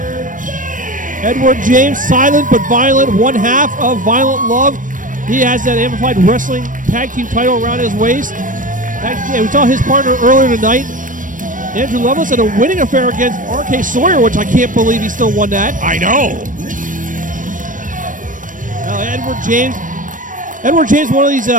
Edward James, silent but violent, one half of Violent Love. He has that Amplified Wrestling Tag Team title around his waist. We saw his partner earlier tonight, Andrew Lovelace, had a winning affair against R.K. Sawyer, which I can't believe he still won that. I know. Edward James, one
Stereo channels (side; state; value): left; late; 0.38 ms